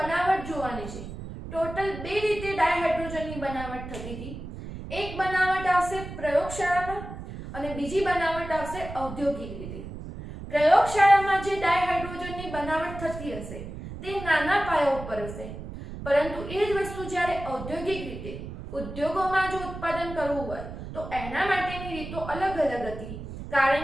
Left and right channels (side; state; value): right; noise; rumble, 10 dB below the sound